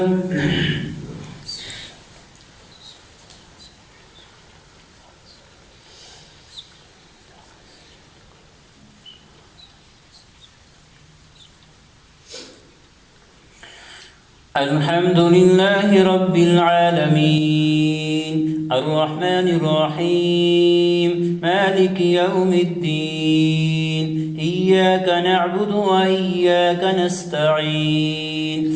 الحمد لله رب العالمين الرحمن الرحيم مالك يوم الدين إياك نعبد وإياك نستعين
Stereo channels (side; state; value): both; identical; correlation 1.00